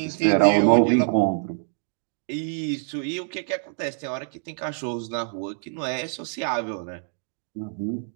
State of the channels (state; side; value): silent; left; digital silence